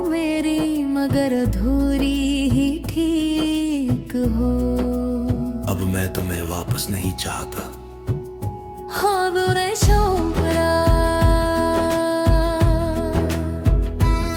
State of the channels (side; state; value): both; identical; correlation 1.00